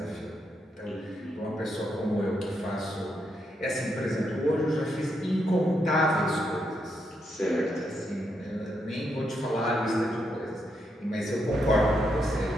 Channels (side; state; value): both; normal; correlation 0.80